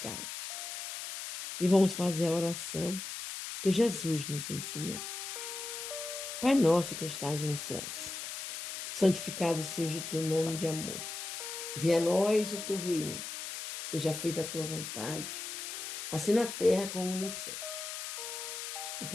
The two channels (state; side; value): noise; left; hiss, 6 dB below the sound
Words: E vamos fazer a oração que Jesus nos ensinou. Pai nosso que estás nos céus, santificado seja o teu nome de amor. Venha a nós o teu reino, seja feita a tua vontade, assim na terra como nos céus. O